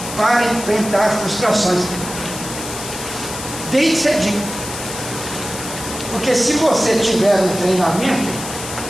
para enfrentar frustrações. Desde cedinho. Porque se você tiver um treinamento,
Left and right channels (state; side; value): noise; left; hiss, 9 dB below the sound